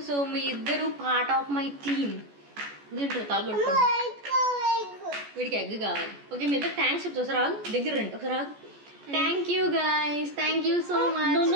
సో మీ ఇద్దరు పార్ట్ ఆఫ్ మై టీమ్. తింటారు తలగొట్టుకో. వీడికి ఎగ్ కావాలి. ఓకే మీ ఇద్దరు థ్యాంక్స్ చెప్తా. ఒకసారి రాదు దగ్గర రండి. ఒకసారి రాదు. Thank you guys. Thank you so much.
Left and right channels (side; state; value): left; late; 14 ms